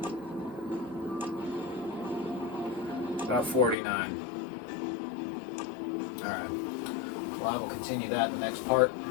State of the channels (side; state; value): right; drops out; at 3.8 s